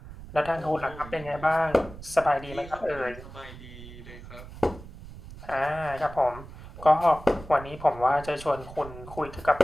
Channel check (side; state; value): right; noise; rumble, 15 dB below the sound